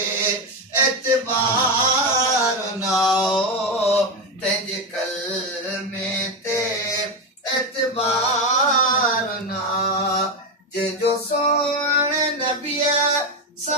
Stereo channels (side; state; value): both; normal; correlation 0.11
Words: एतबार ना तंहिंजे कलमे ते एतबार ना जंहिंजो सोण नबीअ